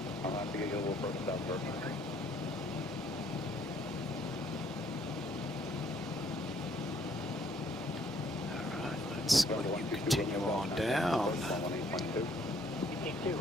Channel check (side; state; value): both; normal; correlation 0.64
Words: I'll have to get you a little further south first. Let's continue on down.